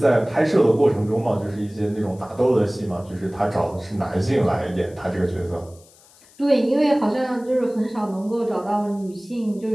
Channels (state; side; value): noise; left; hiss, 27 dB below the sound